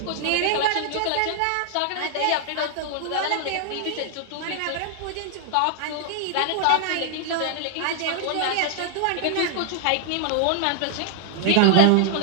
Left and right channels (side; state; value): both; different; correlation -0.01